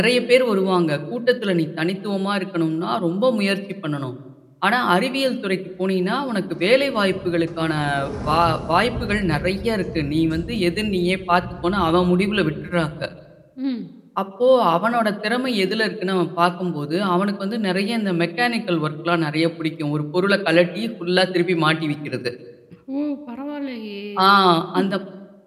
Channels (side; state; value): both; identical; correlation 1.00